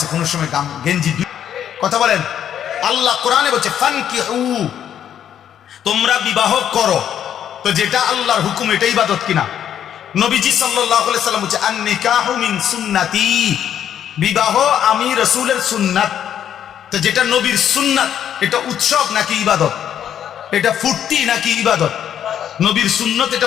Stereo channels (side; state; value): right; quieter; 9.7 dB